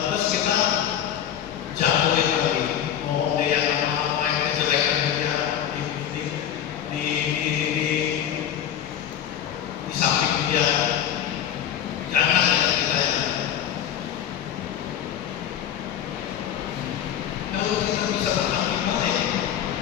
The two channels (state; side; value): quieter; right; 9.9 dB